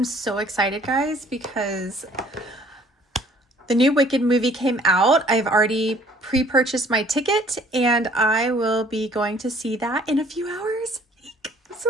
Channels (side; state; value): both; normal; correlation 0.57